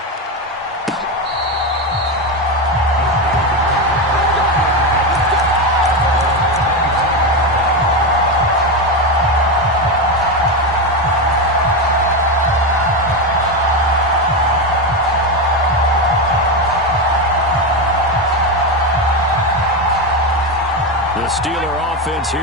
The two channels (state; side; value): normal; both; correlation 0.13